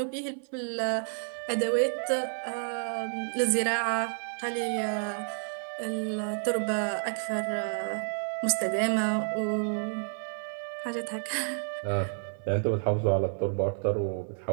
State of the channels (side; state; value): left; silent; 58 dB below the other